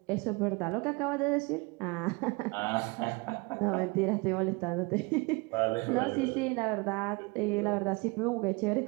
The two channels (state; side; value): quieter; left; 27.3 dB